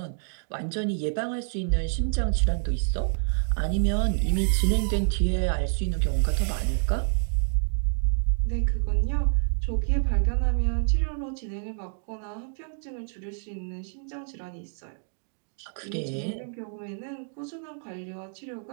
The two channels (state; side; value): silent; left; digital silence